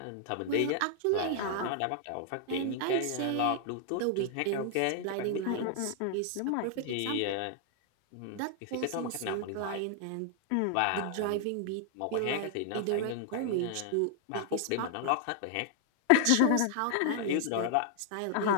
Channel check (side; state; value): both; different; correlation 0.00